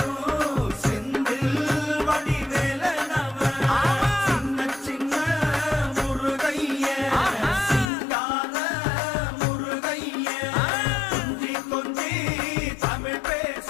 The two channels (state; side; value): drops out; right; at 7.9 s